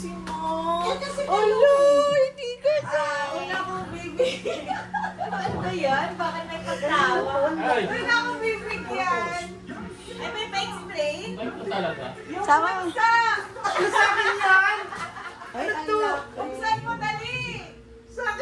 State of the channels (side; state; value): both; identical; correlation 1.00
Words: Mo. Yan kasi Alo, hindi kasama. Wala akong baby. Ano ba yan? Bakit may pagtawa? Ay, Wala akong bibigyan. Ay, may pa-explain? ay ito talaga. Sama. Sa! Sa akin yan! Ay, ito. Buksan mo dali. Sa